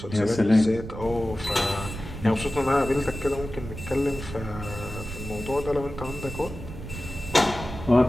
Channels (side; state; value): right; noise; rumble, 10 dB below the sound